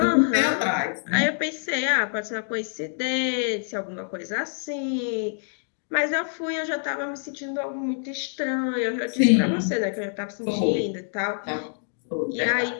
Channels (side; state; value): right; silent; digital silence